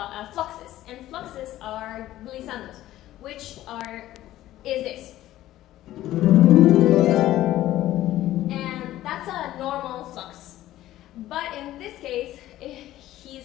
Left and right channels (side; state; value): right; quieter; 14.4 dB